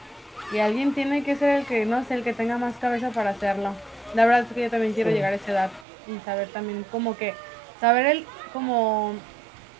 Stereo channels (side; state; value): left; drops out; at 5.9 s